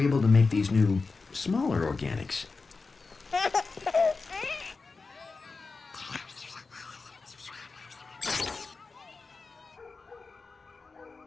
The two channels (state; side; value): quieter; right; 4.2 dB